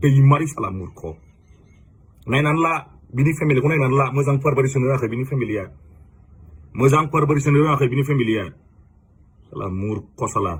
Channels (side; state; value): both; identical; correlation 1.00